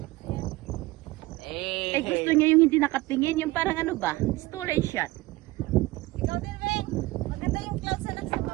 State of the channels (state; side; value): quieter; left; 19.7 dB